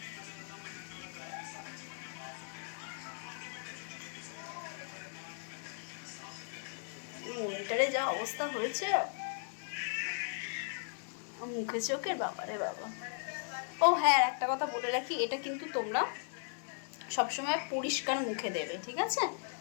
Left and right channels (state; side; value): silent; right; 53 dB below the other